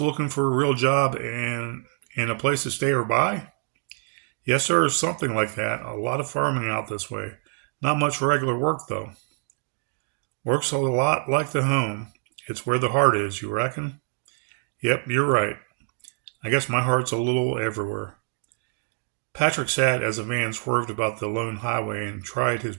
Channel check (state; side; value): silent; left; 61 dB below the other